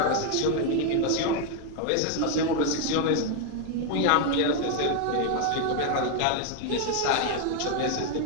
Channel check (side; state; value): both; different; correlation 0.00